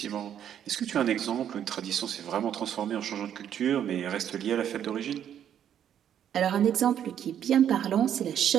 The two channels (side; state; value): left; quieter; 9.7 dB